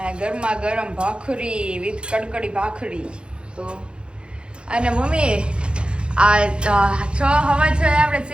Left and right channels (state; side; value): late; left; 0.055 ms